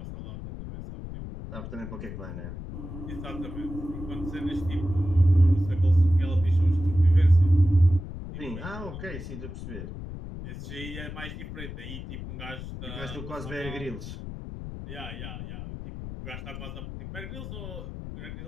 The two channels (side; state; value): left; noise; rumble, 9 dB below the sound